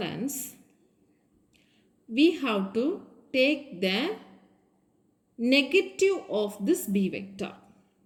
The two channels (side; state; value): both; identical; correlation 1.00